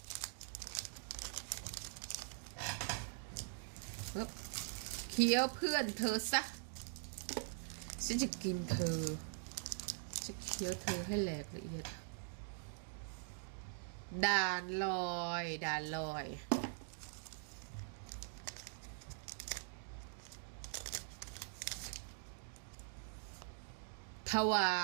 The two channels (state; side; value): silent; left; digital silence